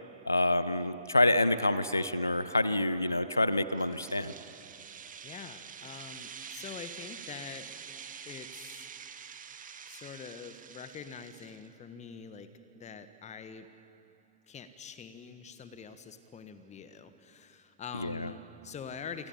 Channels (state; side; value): inverted; both; correlation -0.84